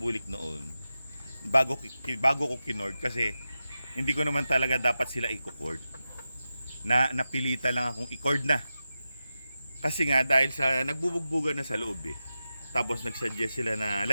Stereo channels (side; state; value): both; inverted; correlation -0.92